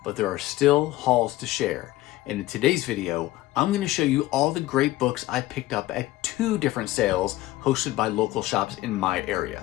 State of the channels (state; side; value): quieter; right; 16.6 dB